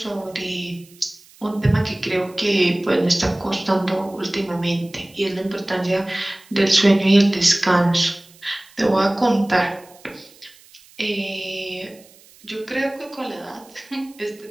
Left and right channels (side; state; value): right; noise; hiss, 26 dB below the sound